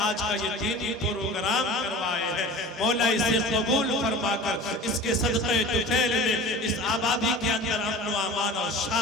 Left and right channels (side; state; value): both; normal; correlation 0.38